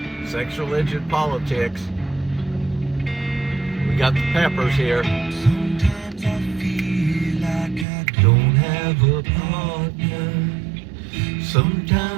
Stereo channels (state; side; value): drops out; left; at 7.9 s